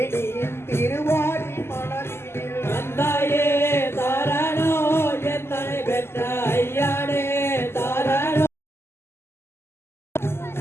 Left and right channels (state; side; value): late; right; 0.12 ms